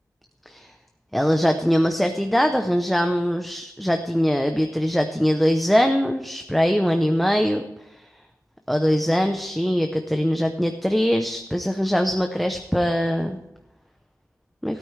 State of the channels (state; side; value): normal; both; correlation 0.97